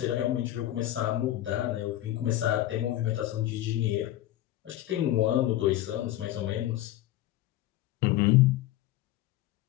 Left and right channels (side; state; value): right; quieter; 14.3 dB